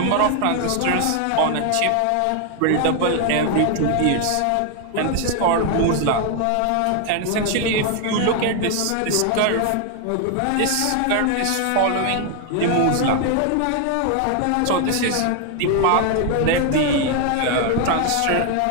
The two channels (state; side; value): different; both; correlation 0.00